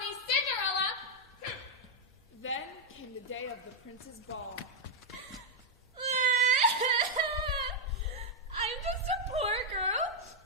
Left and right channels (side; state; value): both; normal; correlation -0.01